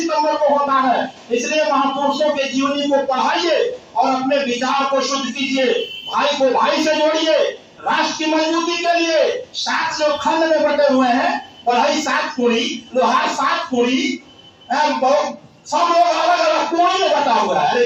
को होता है। इसलिए महापुरुषों के जीवनी को पढ़ाइए और अपने विचार को शुद्ध कीजिए। भाई को भाई से जोड़िए। राष्ट्र की मजबूती के लिए 7 जो खंड में बटे हुए हैं, पढ़ाई 7 कुड़ी, लोहार 7 कुड़ी, सब लोग अलग अलग कुड़ी में बटा हुआ है। अरे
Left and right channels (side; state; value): both; identical; correlation 1.00